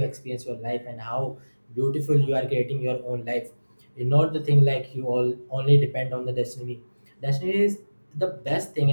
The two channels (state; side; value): inverted; both; correlation -1.00